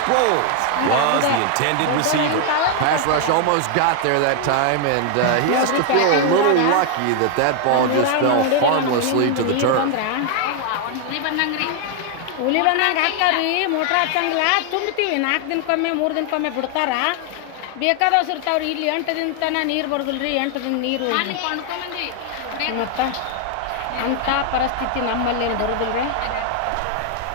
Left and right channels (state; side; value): different; both; correlation 0.00